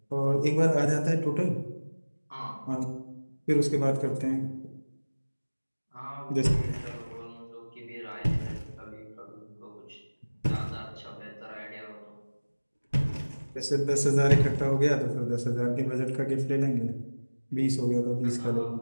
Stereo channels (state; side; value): inverted; both; correlation -1.00